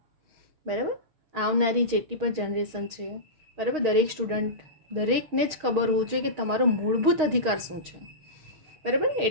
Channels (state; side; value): late; left; 6.4 ms